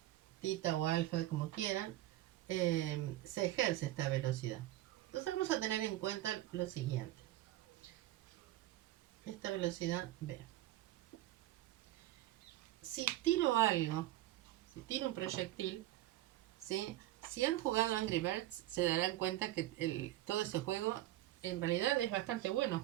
tita o alfa, como quieran, se ejerce esta velocidad. Entonces vamos a tener en cuenta lo siguiente. Esta velocidad B. Si tiro algo, si tiro un proyectil, ¿sí? Si han jugado Angry Birds, se darán cuenta que todo ese juego en realidad es bastante bueno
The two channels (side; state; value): left; quieter; 15.2 dB